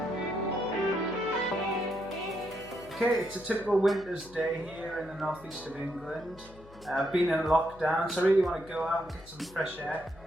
Okay, it's a typical winter's day here in the northeast of England. I've been in lockdown, so I really want to go out and get some fresh air.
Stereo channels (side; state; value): left; noise; hum, 21 dB below the sound